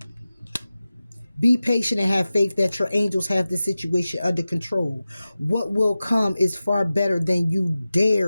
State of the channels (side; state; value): both; inverted; correlation -0.95